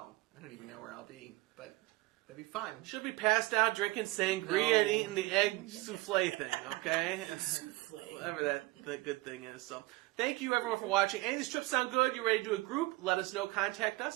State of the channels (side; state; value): left; quieter; 21.5 dB